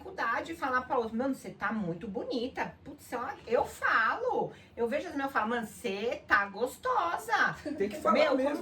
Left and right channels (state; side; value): identical; both; correlation 1.00